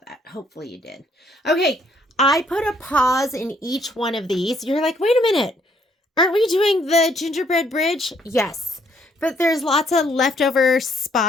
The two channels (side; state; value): both; normal; correlation 0.67